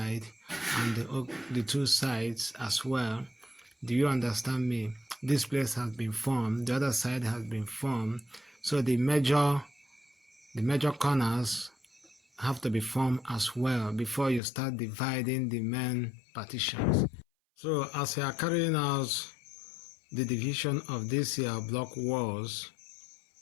and the two sides as well. Do you understand me? This place has been formed, the other side has been formed, so the major corners have to be formed as well before you start dividing the main partitions. So as you are carrying out the division of these block walls,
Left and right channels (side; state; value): right; drops out; at 14.4 s